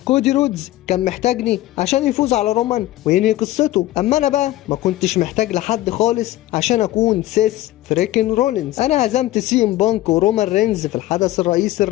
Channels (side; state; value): right; quieter; 15.7 dB